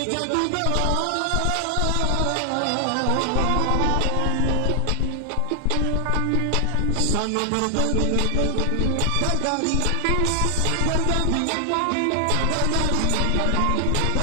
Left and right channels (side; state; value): both; different; correlation 0.00